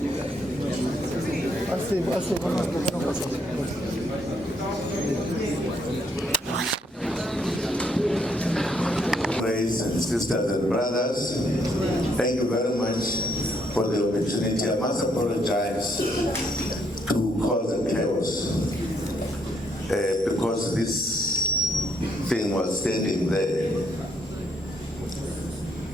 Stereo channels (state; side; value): normal; both; correlation 0.72